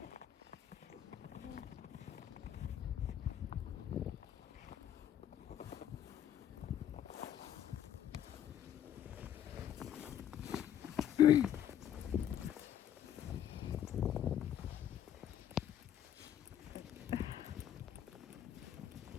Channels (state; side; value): quieter; right; 10.3 dB